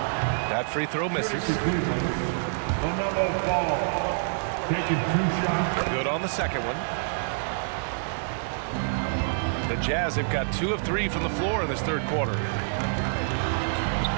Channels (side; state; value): left; silent; digital silence